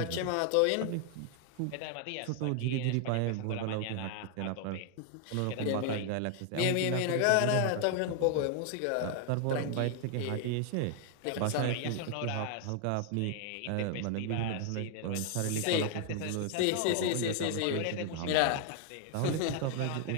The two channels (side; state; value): both; different; correlation 0.00